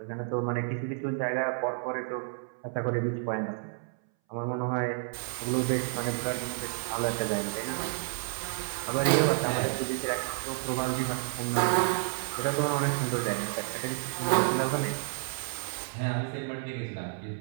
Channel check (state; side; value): silent; left; 58 dB below the other